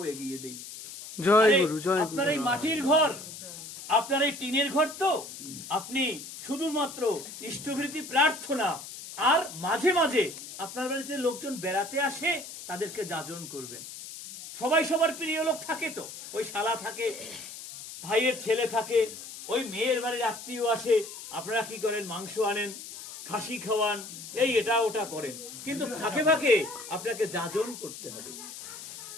এগিয়ে দেই। জয় গুরু, জয় গুরু। আপনার এই মাটির ঘর, আপনার এই টিনের ঘর, তো আপনি শুধুমাত্র ইষ্টভৃতি প্রার্থনা আর মাঝে মাঝে আপনার বাড়িতে লোকজন বেড়াতে আসে, তাদেরকে যাজন করবেন। সবাই সবার প্রিয় লোক থাকে, তো ওই শালা থাকে, ভাইয়ের ছেলে থাকে, ওই মেয়ের বাড়ির আত্মীয় আসে, আপনারা কি করেন? মাংস আনেন, খাসি খাওয়ান, এই এটা ওটা করেন, কিন্তু ফাঁকে ফাঁকে আপনাকে যাজন করতে হবে।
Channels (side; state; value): left; noise; hiss, 12 dB below the sound